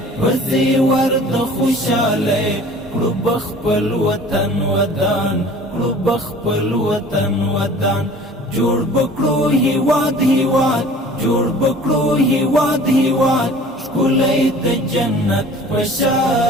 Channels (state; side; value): normal; both; correlation 0.47